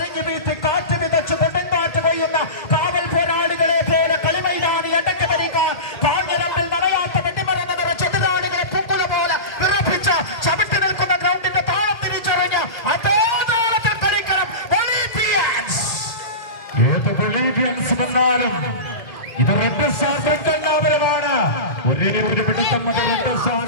വീട്ടി കാറ്റ് വിതച്ച് കൊടുങ്കാറ്റ് കൊയ്യുന്ന കാവൽ പോരാളികളെ പോലെ കളിമൈതാനി അടക്കി ഭരിക്കാൻ കാഞ്ഞിരമ്പിൽ നടയാത്ത വെട്ടിമറന്ന് നിറച്ച് എതിരാളികളെ പൂക്കുല പോലെ വിറപ്പിച്ച് ചവിട്ടി നിൽക്കുന്ന ഗ്രൗണ്ടിന്റെ താളം തിരിച്ചറിഞ്ഞ് അതേ താളത്തിൽ കളിക്കണം ബൊളീവിയൻസ്. ഏത് ബൊളീവിയൻസ് വന്നാലും ഇത് റെഡ് സ്റ്റാർ ബ്രിക്കൽനാപുരമാണ്. ഒരേ ഒരു പിടുത്തം മതി റെഡ് സ്റ്റാർ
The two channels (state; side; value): late; right; 1.9 ms